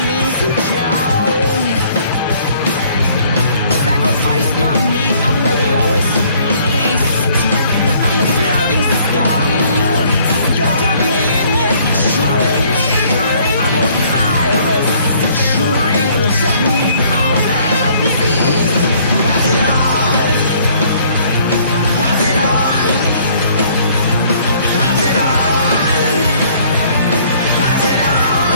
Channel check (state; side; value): inverted; both; correlation -0.60